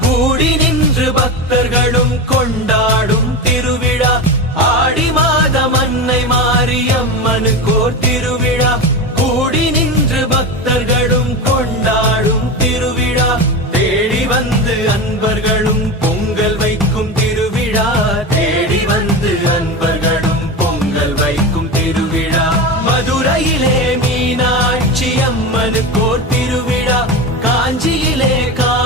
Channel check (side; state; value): both; normal; correlation 0.23